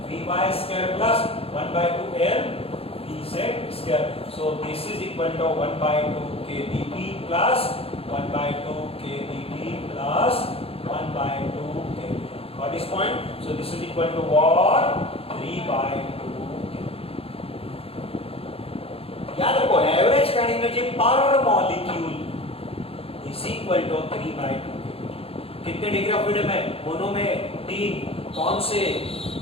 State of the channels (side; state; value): right; late; 0.28 ms